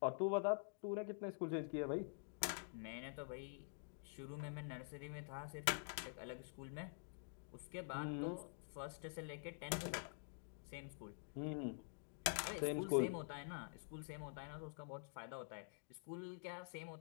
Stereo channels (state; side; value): silent; right; digital silence